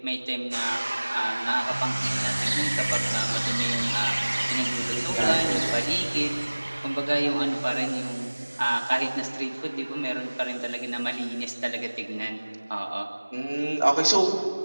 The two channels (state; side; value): inverted; both; correlation -1.00